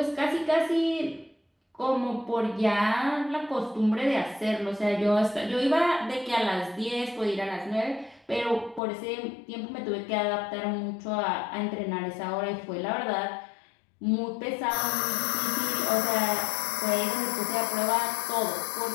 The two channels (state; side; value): drops out; right; at 8.8 s